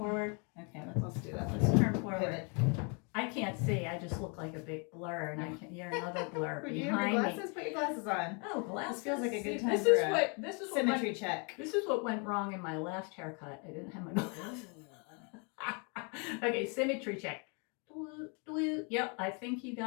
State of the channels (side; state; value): right; quieter; 35.0 dB